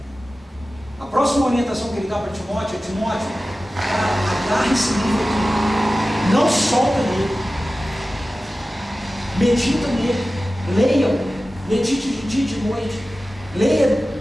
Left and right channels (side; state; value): both; normal; correlation 0.95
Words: A próxima orientação que ele dá para Timóteo é: Timóteo, agarre esse livro aqui, não solta nele, medita nele, leia, medite de dia e de noite, leia